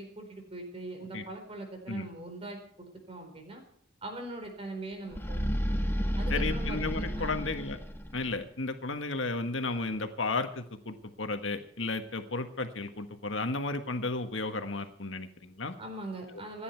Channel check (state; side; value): normal; both; correlation 0.42